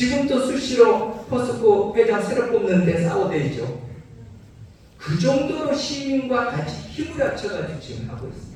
수시로 포스코 회장 새로 뽑는데 싸워대죠. 그 정도로 시민과 같이 힘을 합쳐가지고 지금 하고 있습니다.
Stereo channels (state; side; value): identical; both; correlation 1.00